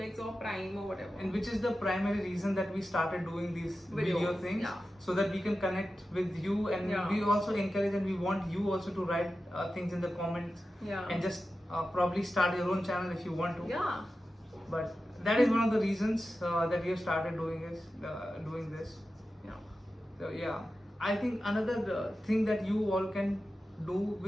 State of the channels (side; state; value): both; normal; correlation 0.92